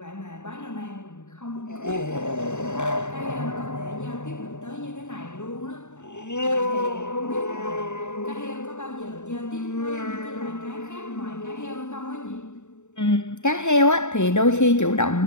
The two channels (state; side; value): late; right; 0.84 ms